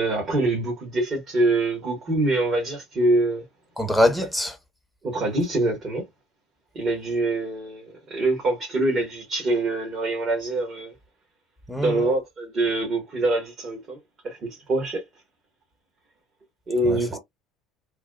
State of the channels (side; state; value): both; normal; correlation 0.65